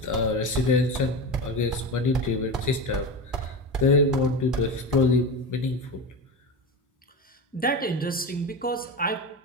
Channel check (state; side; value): normal; both; correlation 0.23